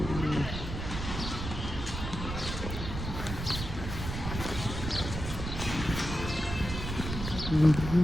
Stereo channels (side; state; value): right; noise; rumble, 5 dB below the sound